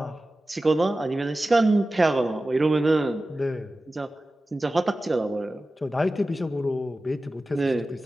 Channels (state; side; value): normal; both; correlation 0.95